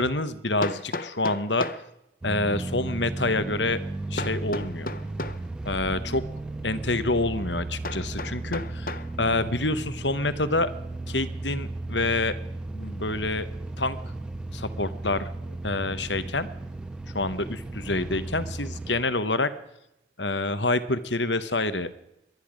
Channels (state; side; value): normal; both; correlation 0.15